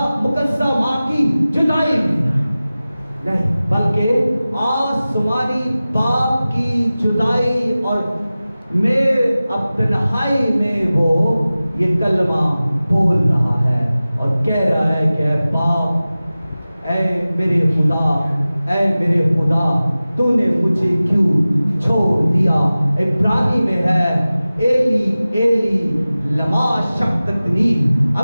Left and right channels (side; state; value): both; inverted; correlation -0.96